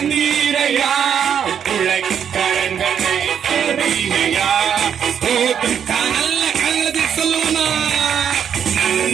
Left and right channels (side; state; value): left; quieter; 8.2 dB